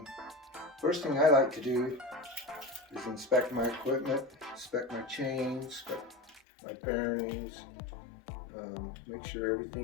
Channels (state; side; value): drops out; right; at 6.4 s